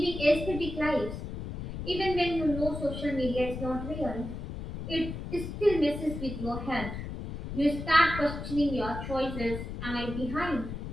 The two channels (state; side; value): noise; left; rumble, 7 dB below the sound